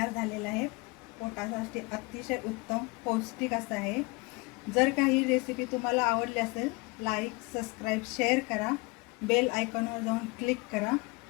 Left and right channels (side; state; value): right; quieter; 26.9 dB